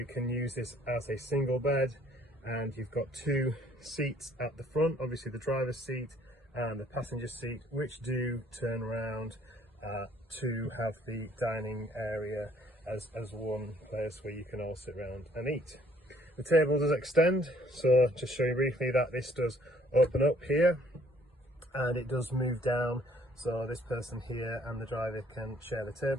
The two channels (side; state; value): both; normal; correlation 0.62